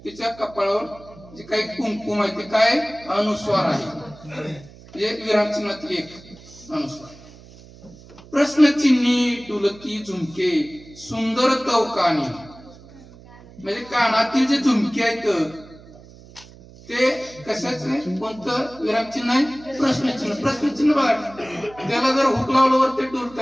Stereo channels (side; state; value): right; noise; hum, 21 dB below the sound